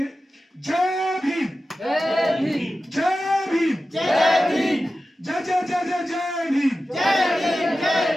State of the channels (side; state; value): both; normal; correlation 0.94